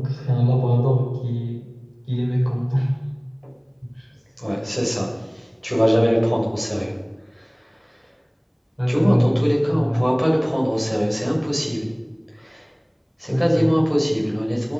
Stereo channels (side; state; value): both; identical; correlation 1.00